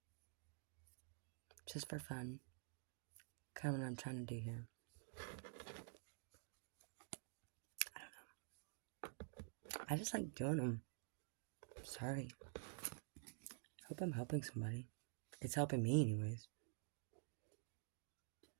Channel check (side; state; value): left; silent; digital silence